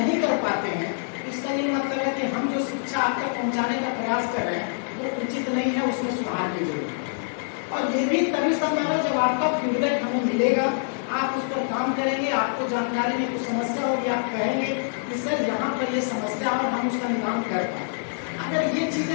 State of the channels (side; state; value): right; silent; digital silence